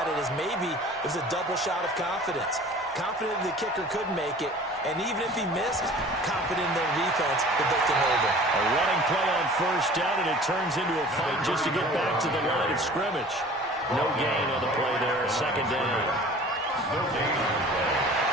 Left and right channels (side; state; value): both; normal; correlation 0.45